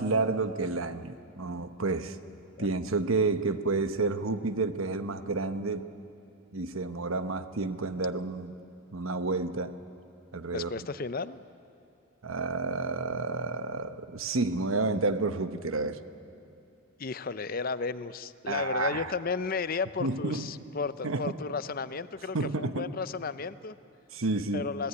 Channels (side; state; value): both; normal; correlation -0.04